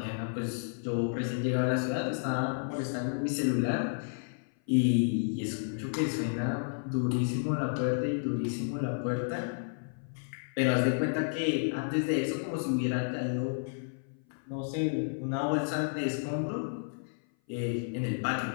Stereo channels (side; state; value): right; silent; 56 dB below the other